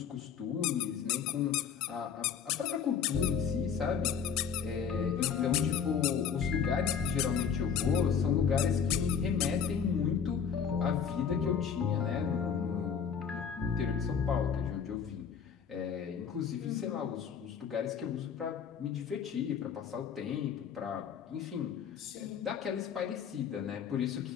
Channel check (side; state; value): right; quieter; 7.0 dB